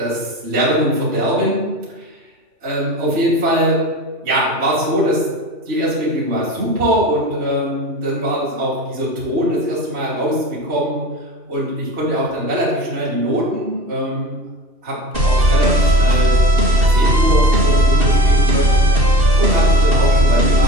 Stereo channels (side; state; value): left; late; 2.7 ms